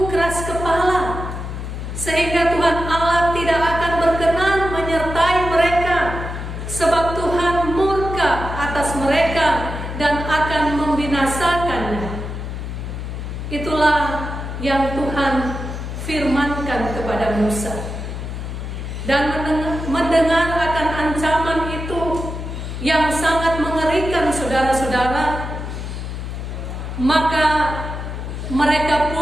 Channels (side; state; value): left; noise; hum, 6 dB below the sound